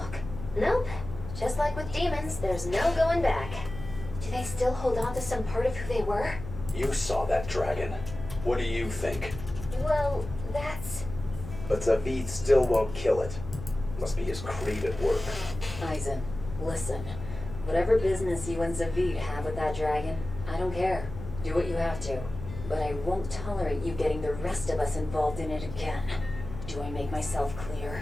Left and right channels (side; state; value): left; noise; hum, 10 dB below the sound